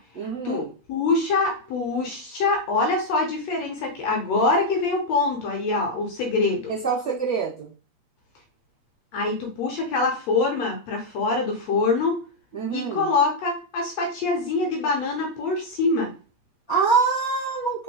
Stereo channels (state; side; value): late; right; 8.4 ms